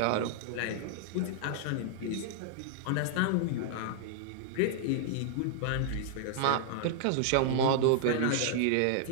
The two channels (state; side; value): different; both; correlation -0.01